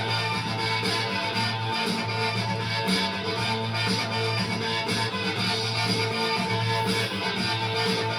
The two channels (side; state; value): both; identical; correlation 1.00